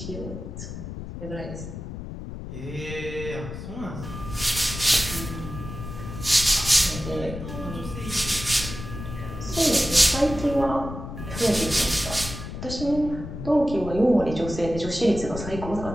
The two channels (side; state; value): left; noise; rumble, 9 dB below the sound